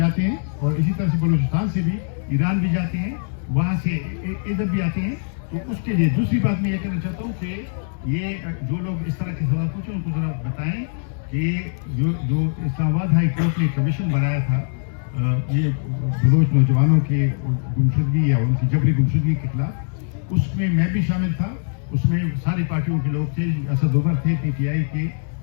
ہیں. اور اسی طرح سے بلوچستان سے بھی ایران بھی جاتے ہیں, وہاں سے ادھر بھی آتے ہیں. تو اس کے لیے دوسری بات میں یہ کہنا چاہتا ہوں کہ یہ جو لوگ اس طرح کے سوال پوچھیں ان کو ذرا بتائیں کہ جو اسلام آباد ہائی کورٹ نے کمیشن بنایا تھا یہ بلوچ نوجوانوں کے گمشدگی یا ان کی جبری گمشدگی کے خلاف, اس میں میں بھی شامل تھا. اس میں ساری پارٹیوں کے لوگ تھے. اسد عمر تھے PTI کے,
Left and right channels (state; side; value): silent; right; digital silence